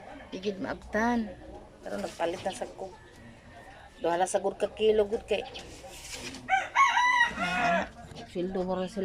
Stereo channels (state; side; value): identical; both; correlation 1.00